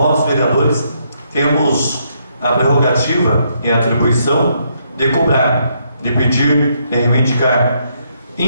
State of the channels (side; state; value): both; inverted; correlation -0.74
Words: vereadores temos a prerrogativa e a atribuição de cobrar, de pedir, de reivindicar.